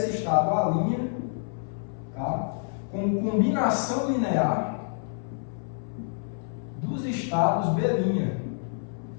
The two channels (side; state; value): right; silent; 58 dB below the other